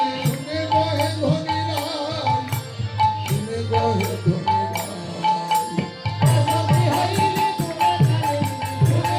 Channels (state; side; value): identical; both; correlation 1.00